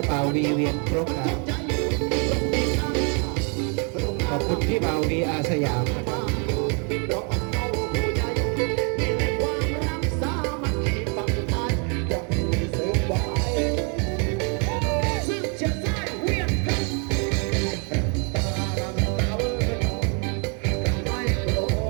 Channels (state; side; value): quieter; left; 37.0 dB